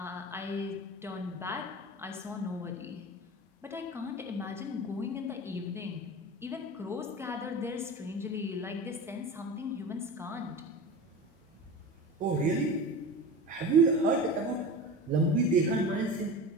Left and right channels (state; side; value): normal; both; correlation 0.31